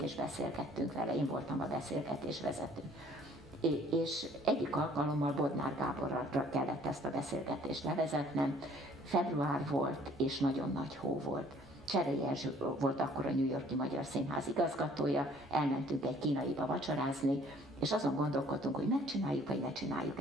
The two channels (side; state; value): both; normal; correlation 0.57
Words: és beszélgettünk vele, én voltam a beszélgetés vezető. És egyik alkalommal Bodnár Gáborra kellett ezt a beszélgetést levezetnem. Február volt, és nagyon nagy hó volt. Cserei Erzső volt akkor a New York-i Magyar Színház igazgatója, elmentünk egy kínaiba vacsorázni, és azon gondolkodtunk, hogy megcsináljuk, vagy ne csináljuk